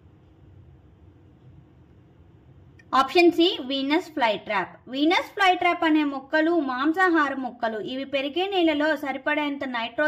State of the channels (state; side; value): identical; both; correlation 1.00